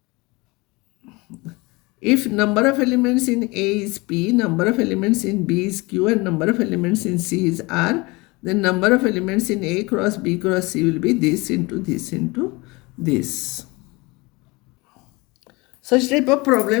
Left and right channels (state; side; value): quieter; right; 24.7 dB